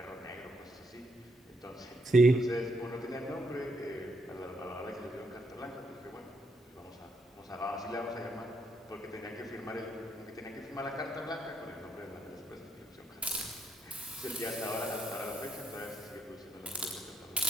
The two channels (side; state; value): both; normal; correlation 0.76